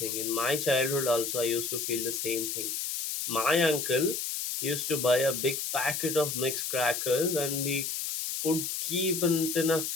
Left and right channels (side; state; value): left; noise; hiss, 3 dB below the sound